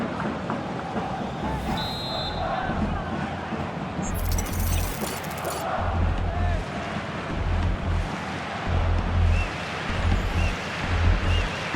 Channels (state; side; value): identical; both; correlation 1.00